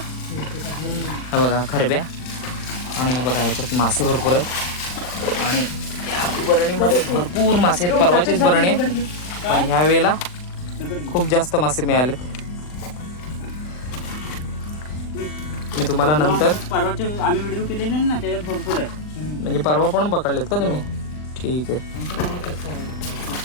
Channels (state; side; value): late; right; 39 ms